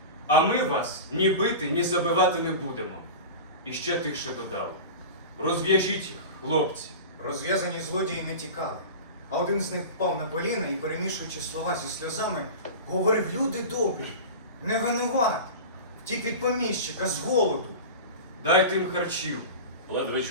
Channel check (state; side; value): inverted; both; correlation -0.30